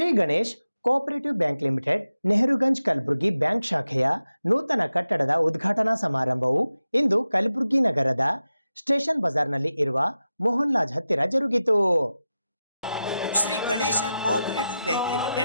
Ganesh cooperative bank limited Nehruganj Kalaburagi bank ಶಾಖೆಯ ನೂತನ ಕಟ್ಟಡದ ಉದ್ಘಾಟನಾ ಸಮಾರಂಭವು ಇಂದು ಕಲಬುರಗಿ ನಗರದ ಸ್ಟೇಷನ್ ಬಜಾರ್ನಲ್ಲಿ ಇರುವ ಮೋಹನ್ ಲಾಜ್ ಹತ್ತಿರ ಜರುಗಿತು. Shri Ganesha cooperative bank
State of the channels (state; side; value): inverted; both; correlation -0.92